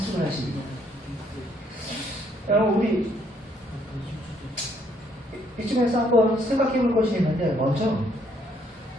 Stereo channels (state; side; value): normal; both; correlation 0.68